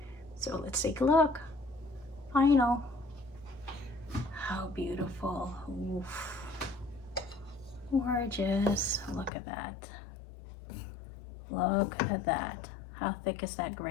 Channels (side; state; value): right; drops out; at 9.3 s